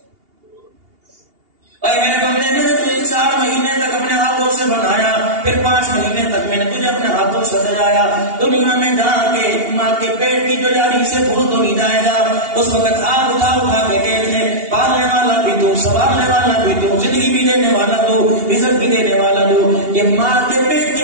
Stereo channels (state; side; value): late; left; 2.8 ms